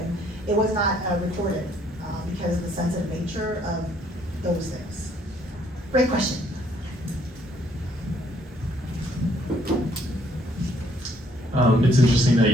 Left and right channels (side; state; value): both; normal; correlation 0.66